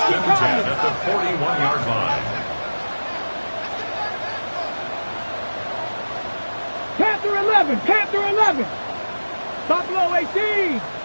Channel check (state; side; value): inverted; both; correlation -1.00